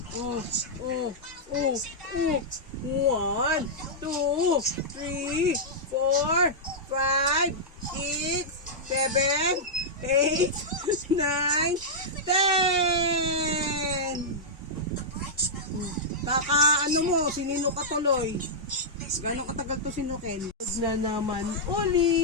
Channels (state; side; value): normal; both; correlation -0.09